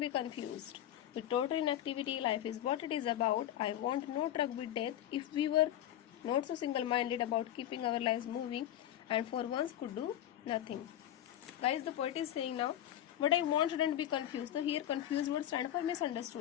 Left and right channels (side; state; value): right; quieter; 11.9 dB